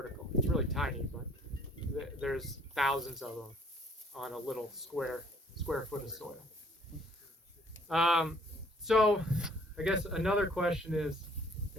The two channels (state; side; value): normal; both; correlation 0.60